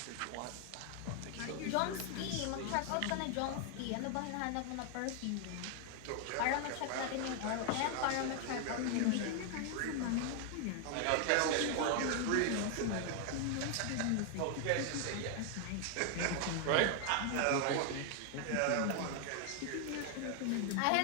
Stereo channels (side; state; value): both; different; correlation 0.00